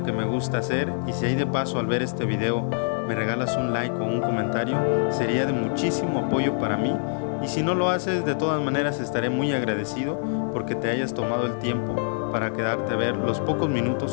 que me gusta hacer, y si hay de paso al ver este video me regalas un like o un comentario, sería de muchísimo apoyo para mí. Y si no lo haces, de todas maneras estaré muy agradecido porque te hayas tomado el tiempo para quedarte a ver los pocos minutos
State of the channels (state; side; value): silent; right; digital silence